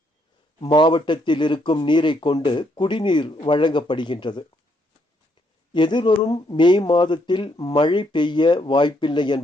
மாவட்டத்தில் இருக்கும் நீரை கொண்டு குடிநீர் வழங்கப்படுகின்றது. எதிர்வரும் மே மாதத்தில் மழை பெய்ய வாய்ப்பில்லை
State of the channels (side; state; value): both; normal; correlation 0.73